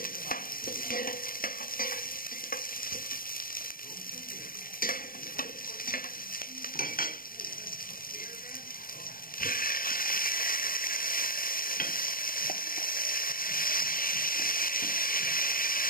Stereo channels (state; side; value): late; right; 0.41 ms